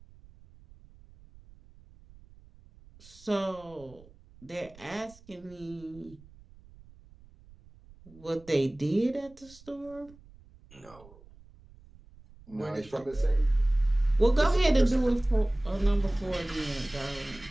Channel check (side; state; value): right; noise; rumble, 24 dB below the sound